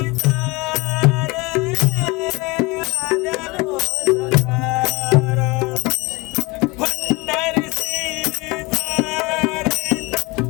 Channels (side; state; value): right; quieter; 24.6 dB